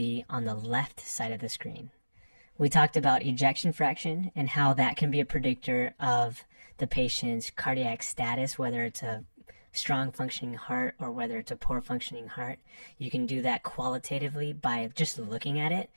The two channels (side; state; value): both; inverted; correlation -1.00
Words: on the left side of the screen. We talked about ejection fraction and how that can be a predictor of the patient's cardiac status, whether it's a strong functioning heart or whether it's a poor functioning heart. You can do that qualitatively by just looking at it,